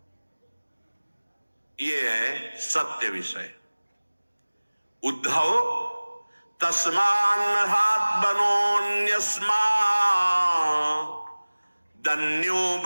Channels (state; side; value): inverted; both; correlation -1.00